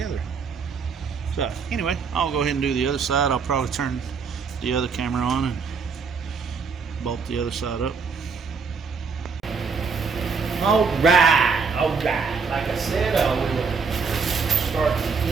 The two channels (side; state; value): left; quieter; 5.3 dB